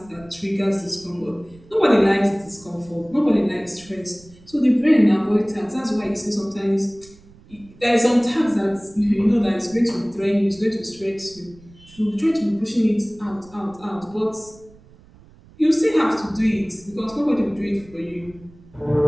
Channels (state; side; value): noise; right; rumble, 25 dB below the sound